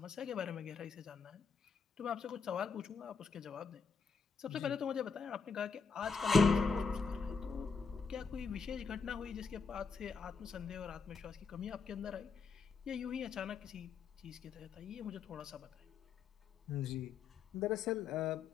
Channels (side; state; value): right; quieter; 5.2 dB